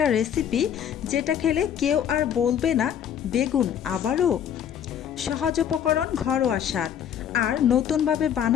রেসিপি যেটা খেলে কেউ আর বলবে না বেগুন আবারও। সহজ উপকরণ, ঘরোয়া স্বাদ আর নতুনভাবে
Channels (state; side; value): quieter; right; 9.2 dB